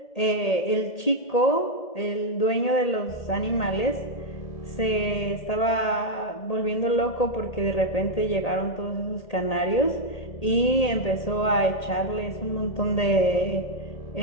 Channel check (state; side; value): late; right; 1.8 ms